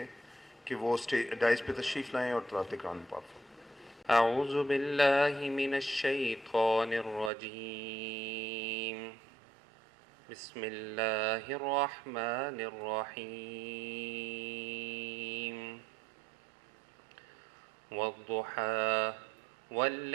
कि वो डाइस पे तशरीफ़ लाएँ और तलावत कुरान पाक फरमाएं। अऊज़ु बिल्लाहि मिनश्शैतानिर्रजीम बिस्मिल्लाहिर्रहमानिर्रहीम वद्दुहा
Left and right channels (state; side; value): drops out; left; at 7.3 s